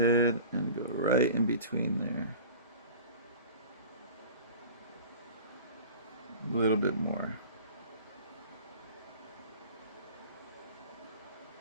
and go right in between there. A little bit more.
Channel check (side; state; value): both; inverted; correlation -0.39